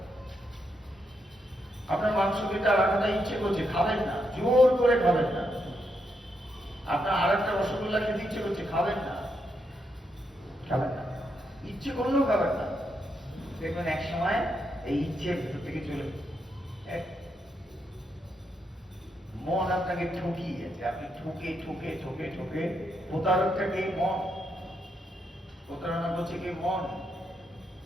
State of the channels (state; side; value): normal; both; correlation 0.81